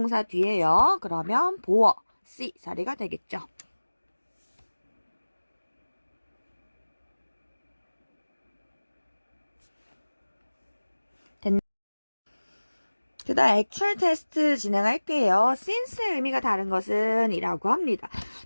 뒤에요. 그러면 보어 C 자리가 되겠죠. 그 다음 액츄얼 테스트 진행할게요. since의 의미가 다른 것은 이라고 합니다.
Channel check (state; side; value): inverted; both; correlation -1.00